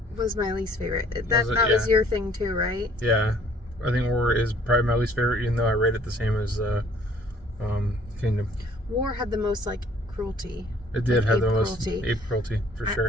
was my least favorite. That was your thing too, right? Yeah. I think War is probably my least favorite, even though I rate it the same as Kingdom. War had the most like cruelty. It did have the most ape cruelty for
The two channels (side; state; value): both; normal; correlation 0.58